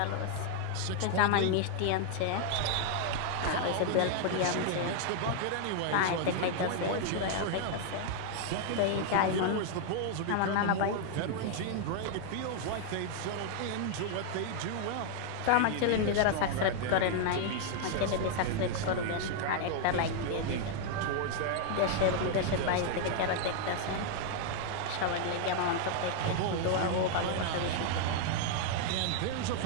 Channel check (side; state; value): both; different; correlation 0.00